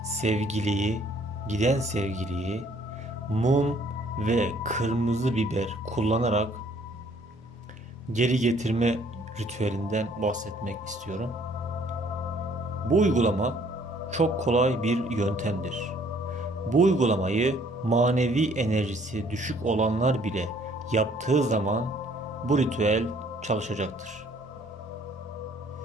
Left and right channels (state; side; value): normal; both; correlation 0.60